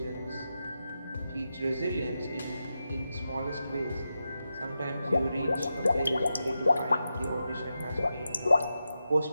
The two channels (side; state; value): both; inverted; correlation -0.89